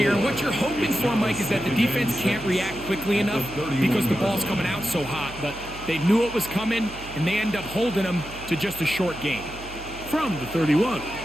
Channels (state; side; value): noise; right; hum, 15 dB below the sound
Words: What you're hoping for, Mike, is that the defense can't react quickly enough because the ball's coming out so hot. But they knew it was coming, and they end up holding them to just a short gain. From the 31,